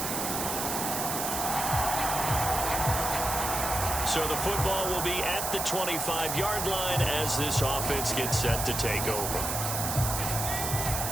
So the football will be at the 25-yard line as this offense gets set to take over.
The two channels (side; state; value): right; noise; hiss, 2 dB below the sound